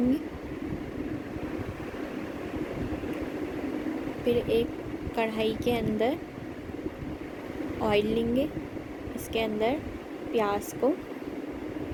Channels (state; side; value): identical; both; correlation 1.00